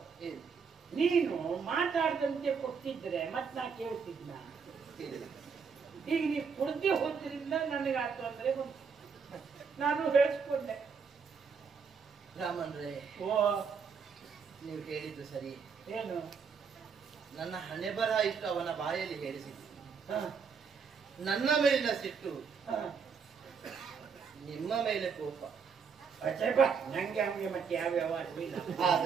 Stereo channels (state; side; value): quieter; left; 5.9 dB